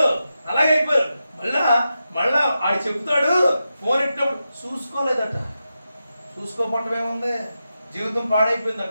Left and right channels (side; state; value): both; inverted; correlation -0.90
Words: అలాగైపోయారు. మళ్ళా ఆడు చెప్తాడు, ఫోన్ ఇచ్చినప్పుడు చూసుకోలేదట. చూసుకోపడటం ఏముంది, జీవితం పాడైపోయింది